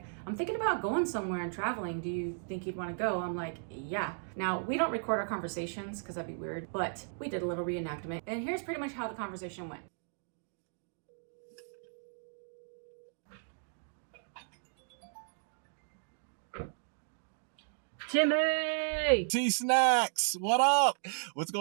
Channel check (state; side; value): silent; left; digital silence